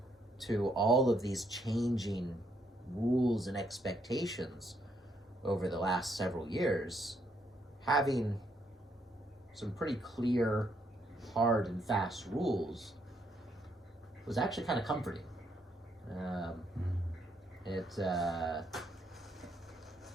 to all of these changing rules and expectations over the last several years, having some pretty clear, hard and fast rules was actually kind of comforting. It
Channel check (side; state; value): both; normal; correlation 0.73